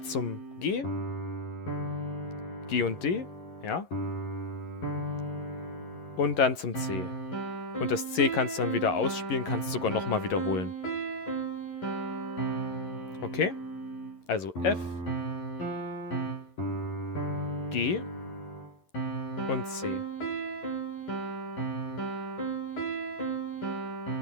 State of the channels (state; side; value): late; right; 11 ms